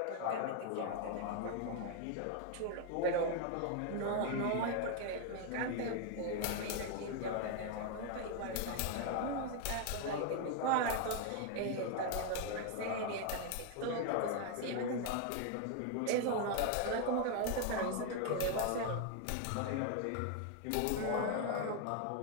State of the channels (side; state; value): both; different; correlation 0.00